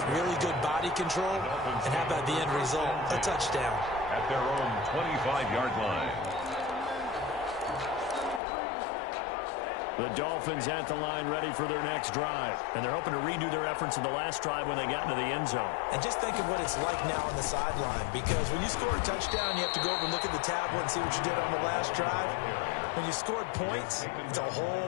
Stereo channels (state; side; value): drops out; right; at 8.4 s